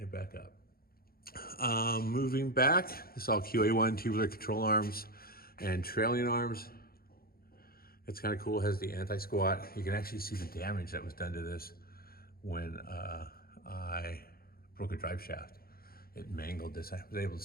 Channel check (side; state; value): right; late; 0.44 ms